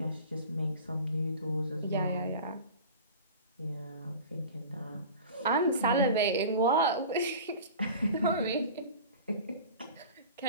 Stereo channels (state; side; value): inverted; both; correlation -0.38